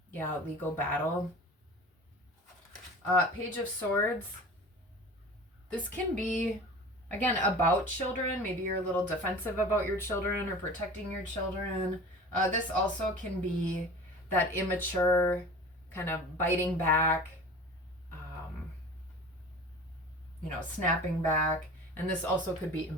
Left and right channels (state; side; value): normal; both; correlation 0.39